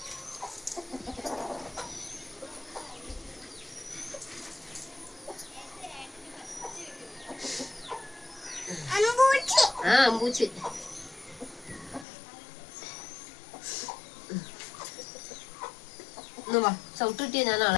അമ്പൂച്ച് ചവിട്ടിട്ടിയ ഞാൻ ആളെ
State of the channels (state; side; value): drops out; right; at 12.1 s